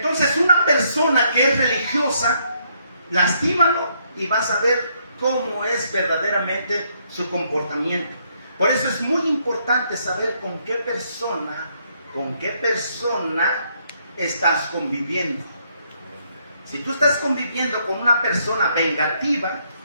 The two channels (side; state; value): both; inverted; correlation -0.72